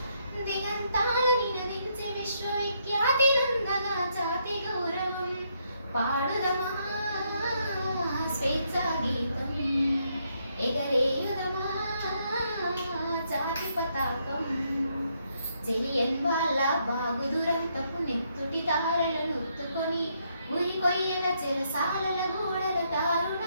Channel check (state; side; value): inverted; both; correlation -0.75